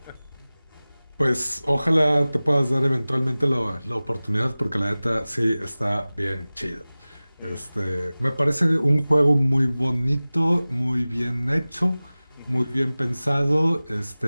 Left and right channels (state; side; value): inverted; both; correlation -0.98